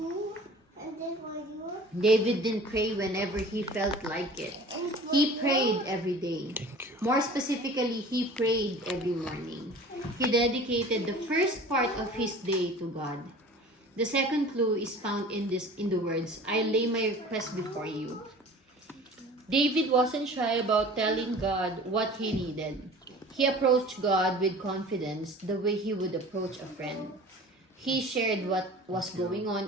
David didn't pray whenever he felt like it. He prayed every day. More specifically, he prayed every morning. He dedicated the first part of his day to God. The second clue is found in the words, "I lay my request before you." David wasn't shy about telling God what he needed. He approached God with confidence the way he would approach a friend. He shared what was going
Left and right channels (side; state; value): both; normal; correlation 0.43